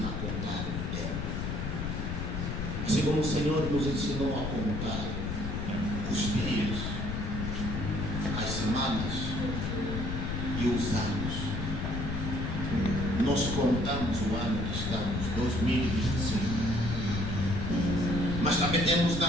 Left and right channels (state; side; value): noise; left; rumble, 3 dB below the sound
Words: a contar o tempo, assim como o Senhor nos ensinou a contar os dias, as semanas e os anos, nós contamos o ano que estamos, 2025, mas também temos